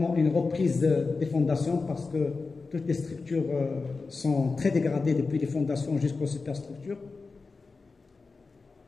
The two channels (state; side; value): quieter; right; 4.2 dB